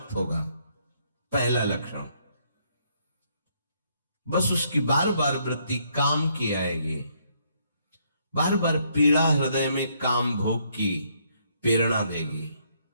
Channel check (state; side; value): inverted; both; correlation -0.70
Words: होगा, पहला लक्षण। बस उसकी बार बार वृत्ति काम की आएगी, बार बार पीड़ा हृदय में काम भोग की प्रेरणा देगी।